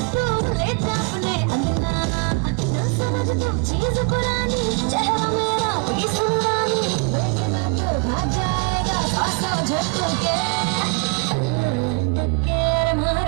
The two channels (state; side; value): quieter; left; 28.5 dB